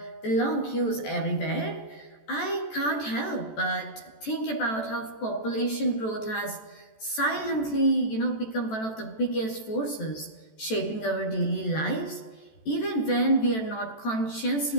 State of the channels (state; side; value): late; right; 14 ms